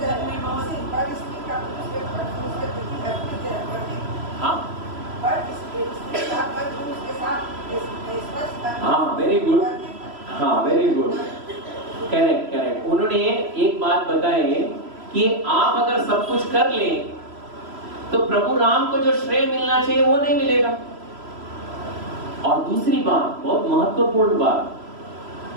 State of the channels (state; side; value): late; left; 3.0 ms